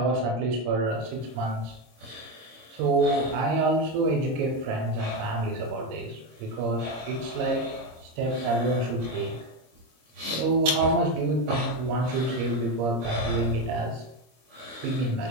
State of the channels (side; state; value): left; late; 26 ms